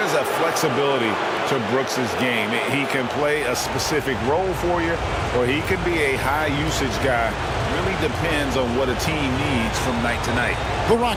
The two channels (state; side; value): identical; both; correlation 1.00